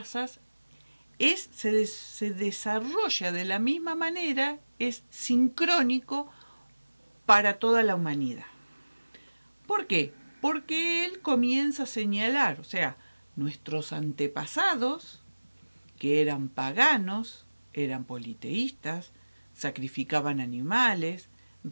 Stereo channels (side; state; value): both; inverted; correlation -1.00